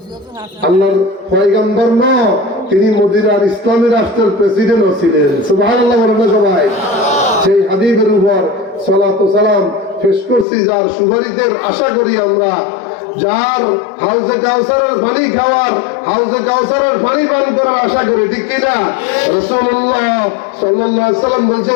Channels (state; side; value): drops out; right; at 10.5 s